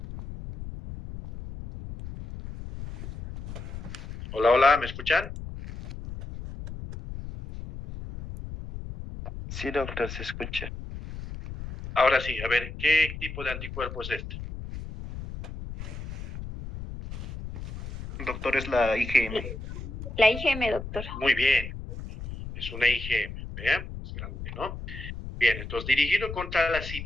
Hola, hola, ¿me escuchan? Sí, doctor, se escucha. Ahora sí, a ver, ¿qué tipo de anticuerpo es este? Doctor, es la IgM. La IgM, doctor. Muy bien, es una IgM, ¿vean? Es grande, ¿no? Bien, entonces dirigido contra la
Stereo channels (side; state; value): left; noise; rumble, 9 dB below the sound